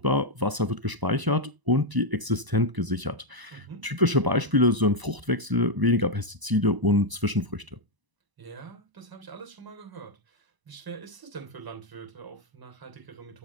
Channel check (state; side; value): late; left; 1.0 ms